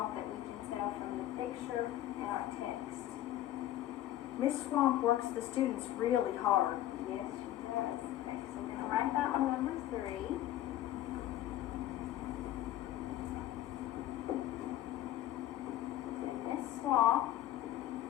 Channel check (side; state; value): right; quieter; 13.1 dB